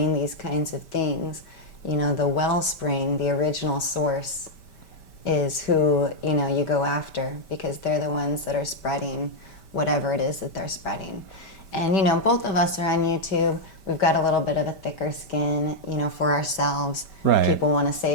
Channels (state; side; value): late; right; 5.1 ms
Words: these kinds of things, you know, the wellspring, the original source, is who, you know, you go after, because they're the ones that are spreading whatever it is that they're spreading. And, you know, both of us are on YouTube. We've got a little bit of a thicker skin, you know, for ourselves. Right. People want to